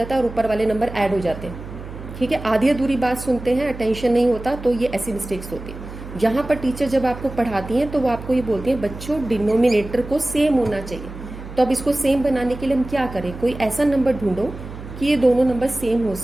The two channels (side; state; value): right; noise; hum, 12 dB below the sound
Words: है और ऊपर वाले नंबर ऐड हो जाते हैं। ठीक है, आधी अधूरी बात सुनते हैं, अटेंशन नहीं होता, तो ये ऐसी मिस्टेक्स होती है। यहाँ पर टीचर जब आपको पढ़ाती हैं तो वो आपको ये बोलती हैं बच्चों डिनोमिनेटर को सेम होना चाहिए। तो अब इसको सेम बनाने के लिए हम क्या करें, कोई ऐसा नंबर ढूंढो कि ये दोनों नंबर सेम हो